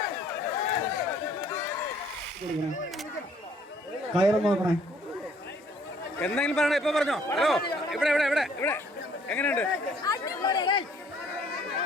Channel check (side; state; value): both; normal; correlation 0.61